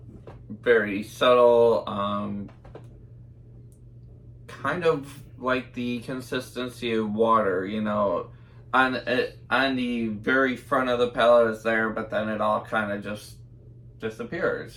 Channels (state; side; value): identical; both; correlation 1.00